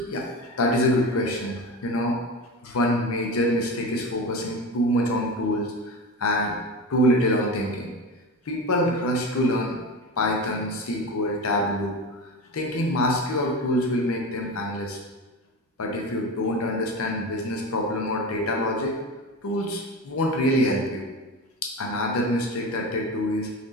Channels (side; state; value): both; normal; correlation 0.27